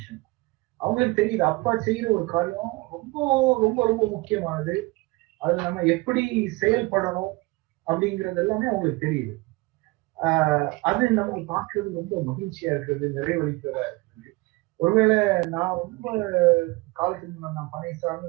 அவங்களுக்கு தெரியுது அப்பா செய்யற ஒரு காரியம் ரொம்ப ரொம்ப ரொம்ப முக்கியமானது, அதுல நம்ம எப்படி செயல்படணும் அப்படிங்கிறது எல்லாமே அவங்களுக்கு தெரியுது. அது நம்ம பார்க்கறது ரொம்ப மகிழ்ச்சியா இருக்கிறது, நிறைவளிக்கிறதா இருக்குது. ஒருவேளை நான் ரொம்ப காலத்துக்கு நான் பனை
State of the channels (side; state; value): left; quieter; 23.4 dB